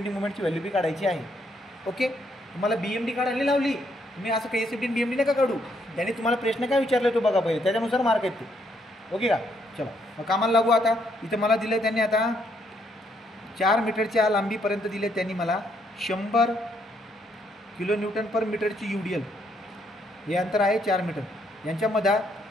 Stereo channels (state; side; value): normal; both; correlation 0.72